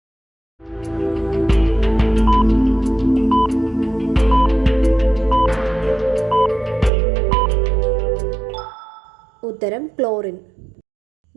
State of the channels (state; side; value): drops out; left; at 6.9 s